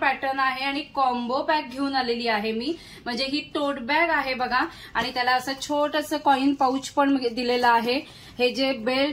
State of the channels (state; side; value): identical; both; correlation 1.00